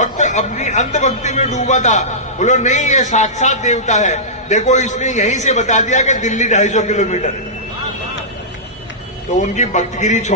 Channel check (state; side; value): normal; both; correlation -0.16